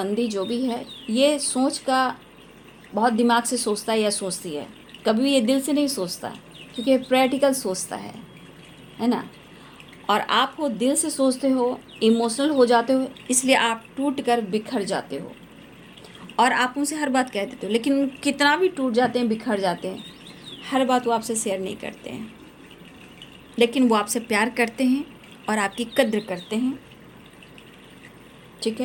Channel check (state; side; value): identical; both; correlation 1.00